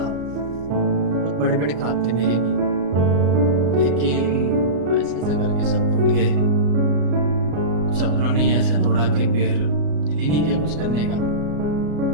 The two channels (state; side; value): late; left; 34 ms